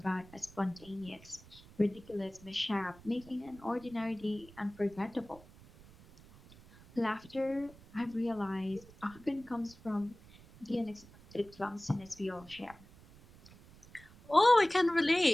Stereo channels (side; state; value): right; noise; rumble, 22 dB below the sound